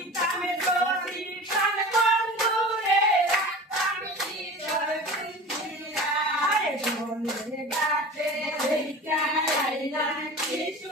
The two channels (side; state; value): both; normal; correlation 0.36